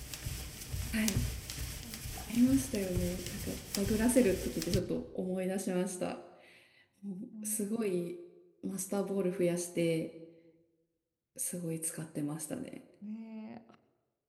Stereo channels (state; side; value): identical; both; correlation 1.00